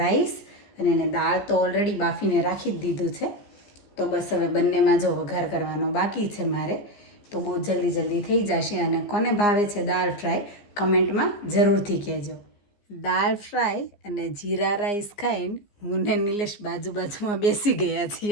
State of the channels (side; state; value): right; late; 15 ms